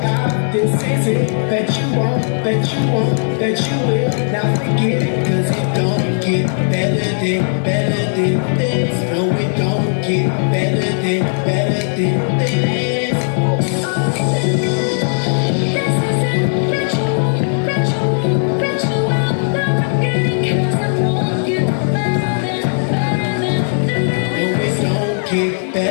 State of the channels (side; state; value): right; silent; 58 dB below the other